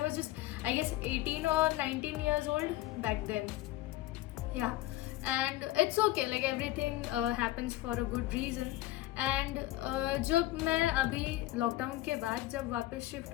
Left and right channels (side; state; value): right; quieter; 16.2 dB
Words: was just, I guess, 18 or 19 years old back then. Yeah, and it's okay, like everything happens for a good reason. And जब मैं अभी लॉकडाउन के बाद जब वापस शिफ्ट